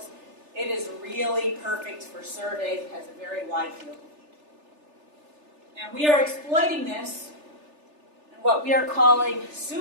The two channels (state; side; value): late; left; 3.4 ms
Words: it is really perfect for surveys. It has a very wide field of view. And we are exploiting this in what we are calling